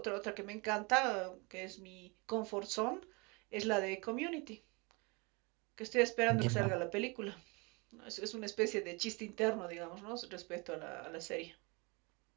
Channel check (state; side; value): quieter; left; 28.7 dB